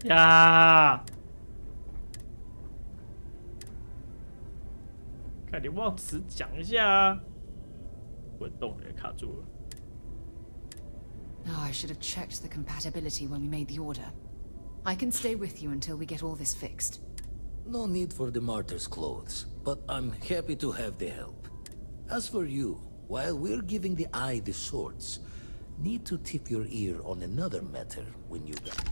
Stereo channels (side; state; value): both; inverted; correlation -1.00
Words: 呀！看你忘词讲一下啊！滚动也卡住了。Oh, I should have checked the compatibility when we made the order. I can stay with you until we get all this fixed. No need for the martyr's clothes, but I'm happy to have the help. As for you, while we're giving the eye the swords, need to tip your ear on another matter when you